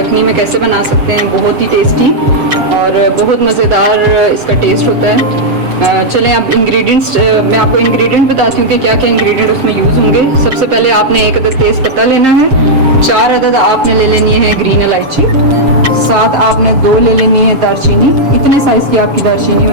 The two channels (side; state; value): left; late; 7.4 ms